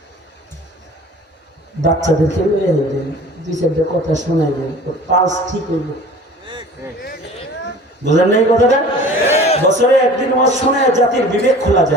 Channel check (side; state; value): both; normal; correlation 0.44